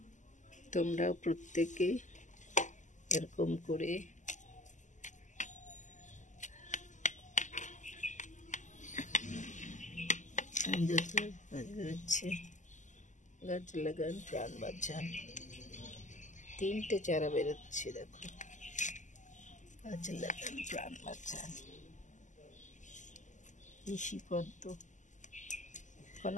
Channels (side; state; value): right; late; 0.36 ms